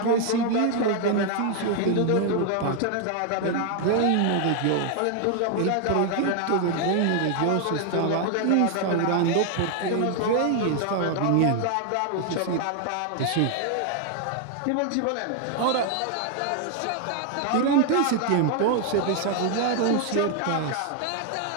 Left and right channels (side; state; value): both; different; correlation 0.00